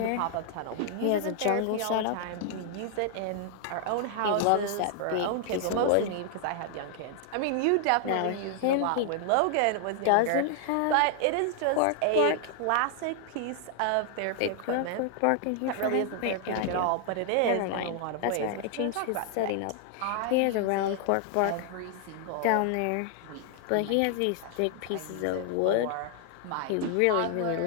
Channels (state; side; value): different; both; correlation 0.00